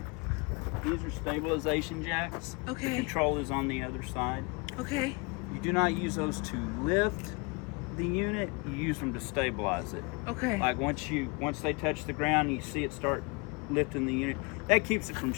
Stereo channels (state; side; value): quieter; right; 29.1 dB